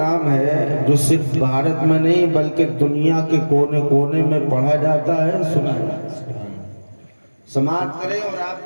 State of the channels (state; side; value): inverted; both; correlation -1.00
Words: ہے جو صرف بھارت میں نہیں بلکہ دنیا کے کونے کونے میں پڑھا جاتا ہے، سنا جاتا ہے۔ سماعت کریں اور آپ